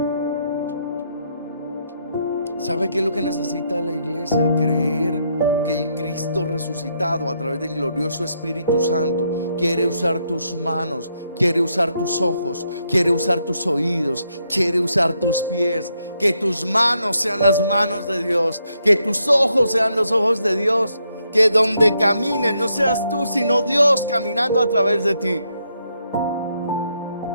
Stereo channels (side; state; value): both; inverted; correlation -0.77